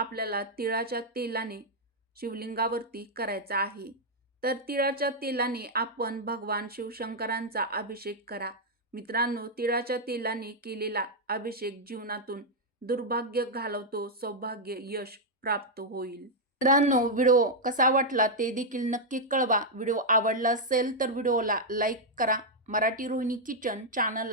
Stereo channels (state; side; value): normal; both; correlation -0.02